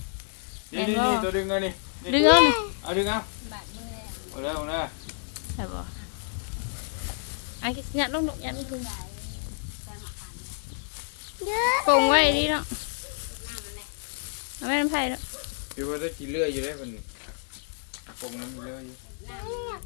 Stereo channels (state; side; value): silent; right; digital silence